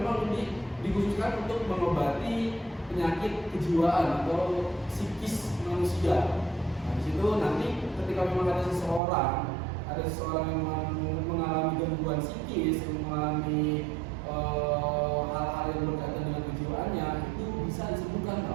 ini dikhususkan untuk mengobati penyakit kejiwaan atau psikis manusia. Nah, di situ nanti ketika memang ada seseorang yang mengalami gangguan psikis, mengalami hal-hal yang berkaitan dengan kejiwaannya, itu bisa disembuhkan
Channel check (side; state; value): left; drops out; at 9.0 s